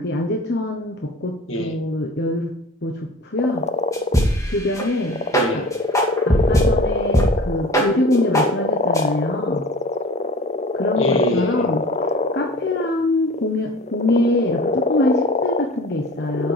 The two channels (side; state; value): both; normal; correlation 0.42